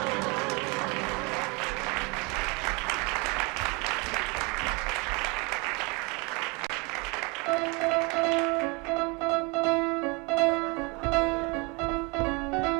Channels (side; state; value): left; quieter; 29.3 dB